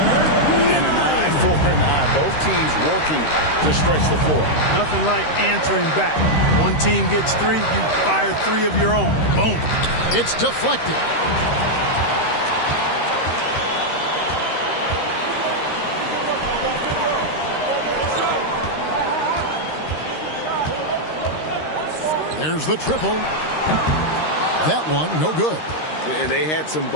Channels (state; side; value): late; right; 13 ms